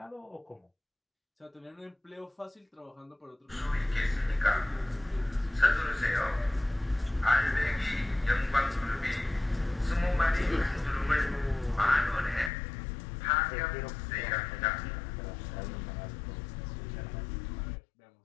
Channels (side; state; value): right; drops out; at 12.5 s